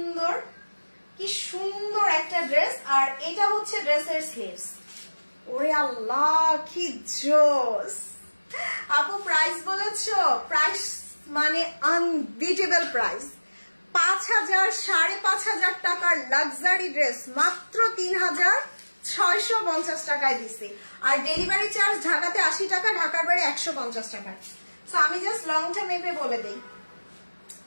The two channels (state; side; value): inverted; both; correlation -1.00